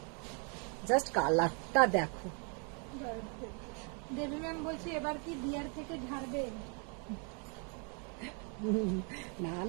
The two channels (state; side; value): quieter; left; 37.7 dB